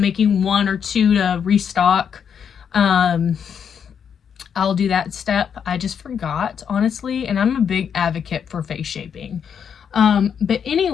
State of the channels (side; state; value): right; quieter; 7.5 dB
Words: 1 or 2 to restock, I'll do that step. I just forgot, honestly, and I'm a big advocate for face shaping. But